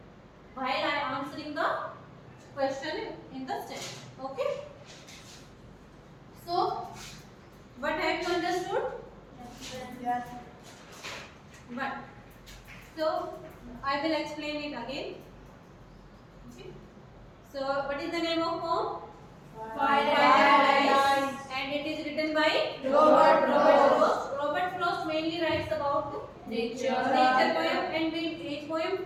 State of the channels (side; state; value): both; identical; correlation 1.00